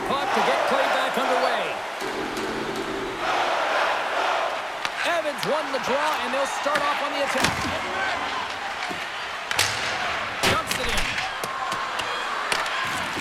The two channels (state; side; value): identical; both; correlation 1.00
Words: puck to get play back underway. Evans won the draw, and they'll start off on the attack. Dumps it in.